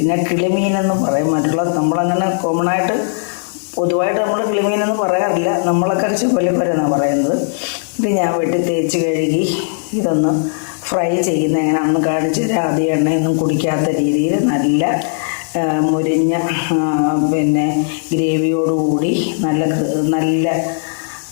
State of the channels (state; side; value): silent; right; 68 dB below the other